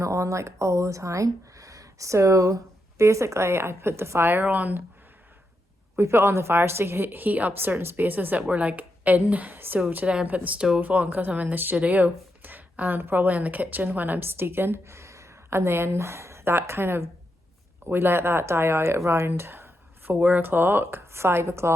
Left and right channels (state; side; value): normal; both; correlation 0.84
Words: it on like all the time. So basically I put the fire on, we put on the fire to heat up certain spaces that we're like in. So today I put the stove on because I'm in the studio, and probably in the kitchen when I'm steeking. And then that kind of, we let that die out around 4 o'clock, 5